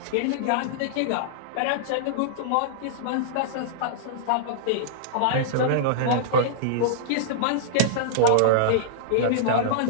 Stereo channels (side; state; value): both; different; correlation -0.02